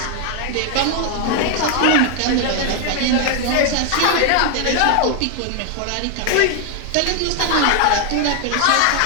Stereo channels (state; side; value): different; both; correlation 0.00